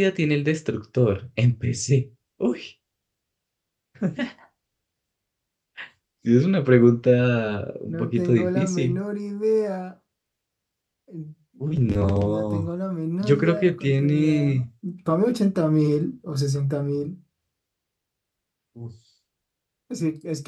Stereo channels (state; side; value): identical; both; correlation 1.00